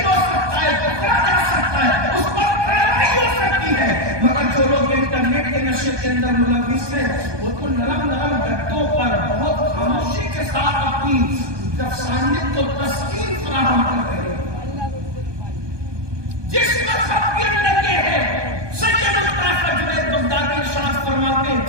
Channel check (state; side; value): late; left; 1.2 ms